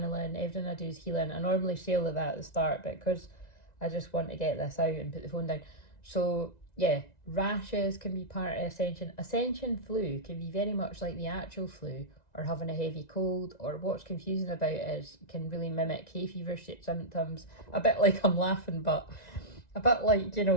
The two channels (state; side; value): late; right; 1.9 ms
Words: Everything I do is healing. I normally say all of that at the start, but because I just want to get this out and put the phone down. So yeah, rashes can be part of Ascension. Ascension flu can be very much like the actual flu, or having a heavy cold, or what's confusing about it is can really mimic hay fever symptoms. A bit like, I'm laughing, but a bit like,